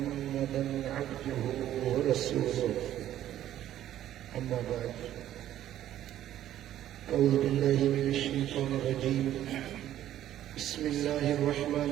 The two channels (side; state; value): left; quieter; 12.2 dB